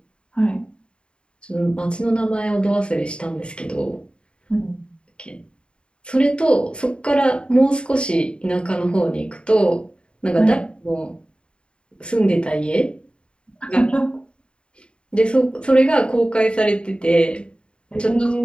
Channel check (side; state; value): right; late; 0.054 ms